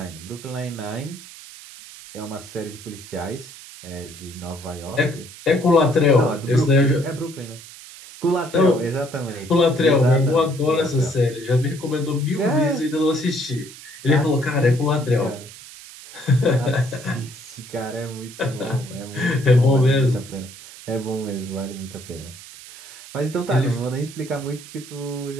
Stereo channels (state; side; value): noise; right; hiss, 17 dB below the sound